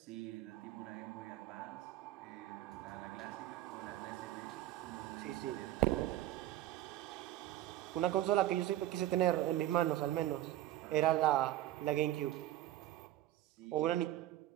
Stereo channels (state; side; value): quieter; left; 14.3 dB